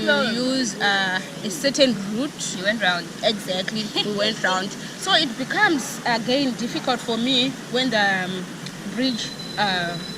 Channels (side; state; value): both; identical; correlation 1.00